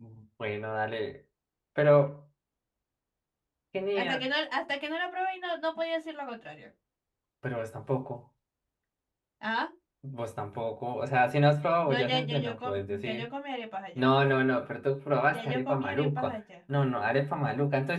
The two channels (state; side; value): identical; both; correlation 1.00